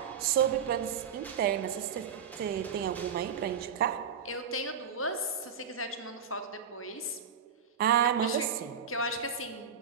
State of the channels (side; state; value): left; quieter; 7.0 dB